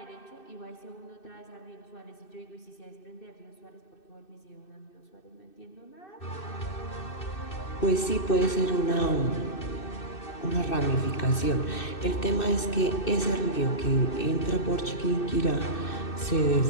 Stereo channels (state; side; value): late; right; 2.6 ms